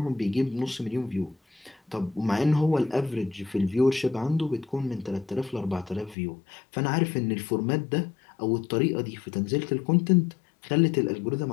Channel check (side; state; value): right; drops out; at 6.2 s